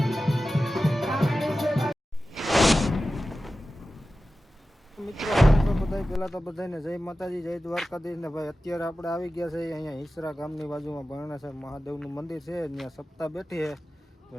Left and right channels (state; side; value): normal; both; correlation 0.94